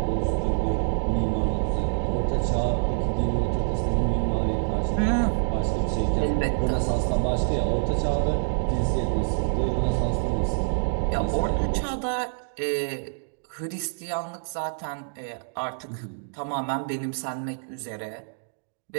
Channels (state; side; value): silent; left; digital silence